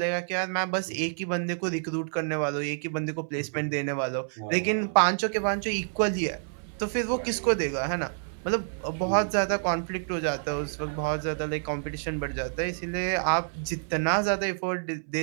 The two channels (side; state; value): left; silent; 59 dB below the other